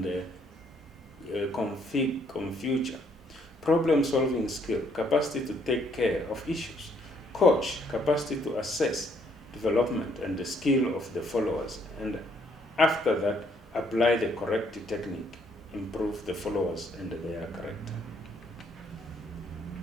future, problem-solving skill, capacity to take care of issues, coach, capacity to assess development and the skill of the followers, and after that, apply the correct technique, improve the followers and their character.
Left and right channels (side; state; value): both; normal; correlation 0.67